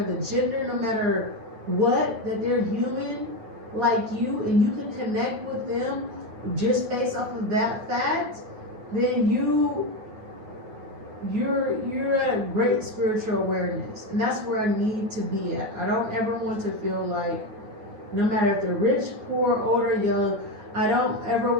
the gender, no matter what, that they're human like you, and you can connect with them just based off of that fact, then you're at a great spiritual awareness. And that's where I need to be at. I don't ever want to feel like No matter if they're rich, poor, old, or young, I don't ever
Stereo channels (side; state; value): left; late; 9.5 ms